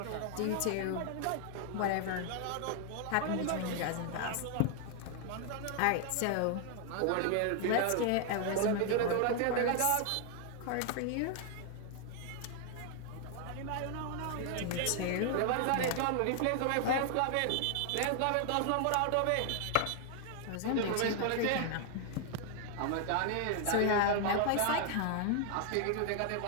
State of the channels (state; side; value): different; both; correlation 0.00